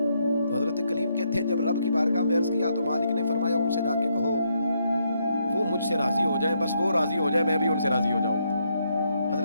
تو حضرت کلیم کہتے ہیں جب رب کی بارگاہ میں عرض کیا تو مالک نے فرمایا ان سے جا کے کہو وہ مجھ سے راضی ہو جائیں, بس وہ راضی ہو جائے میں بھی ان سے راضی ہو جاؤں گا.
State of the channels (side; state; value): both; inverted; correlation -0.77